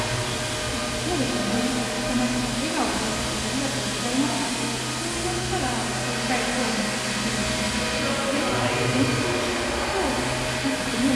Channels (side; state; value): both; identical; correlation 1.00